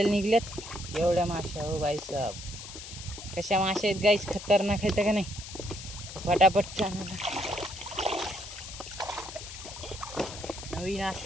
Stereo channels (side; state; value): left; noise; hiss, 12 dB below the sound